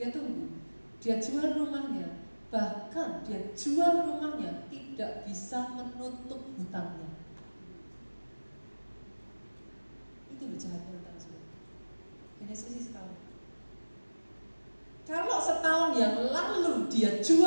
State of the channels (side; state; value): both; inverted; correlation -1.00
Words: tunggu. Dia jual rumahnya. Bahkan dia jual rumahnya tidak bisa menutup hutangnya. Itu loh jahatnya hutang, saudara. Hanya selisih setahun. Kalau setahun yang lalu dia